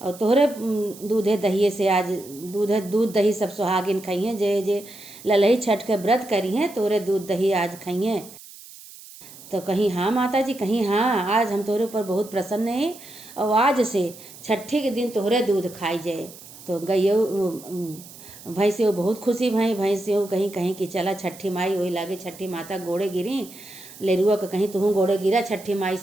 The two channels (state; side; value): noise; right; hiss, 18 dB below the sound